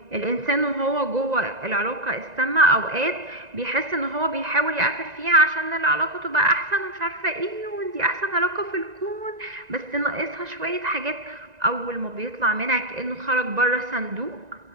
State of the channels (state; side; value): late; left; 1.9 ms